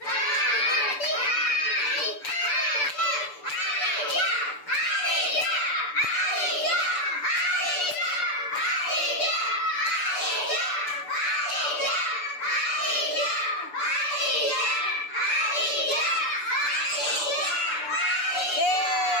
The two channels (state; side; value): late; right; 6.9 ms